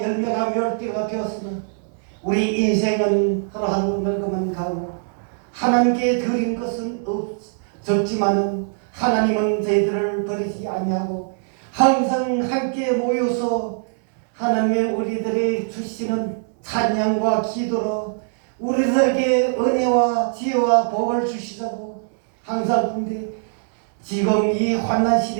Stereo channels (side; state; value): left; silent; 64 dB below the other